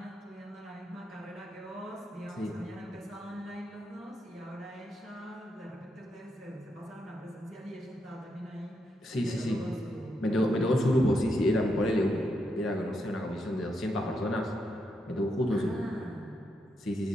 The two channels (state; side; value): normal; both; correlation 0.81